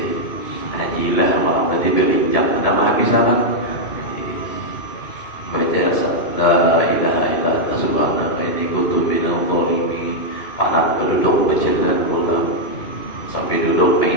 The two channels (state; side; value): late; right; 2.9 ms